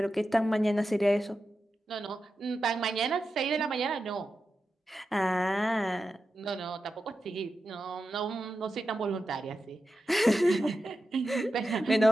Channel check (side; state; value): both; normal; correlation 0.90